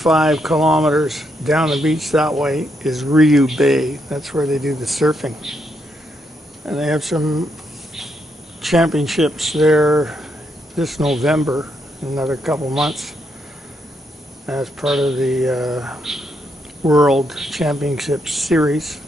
kilometers down the beach that way is Ryu Bay. That's where they do the surfing. And they have some championships there this November, in another couple months, as part of the World Championship Series.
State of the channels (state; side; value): normal; both; correlation 0.78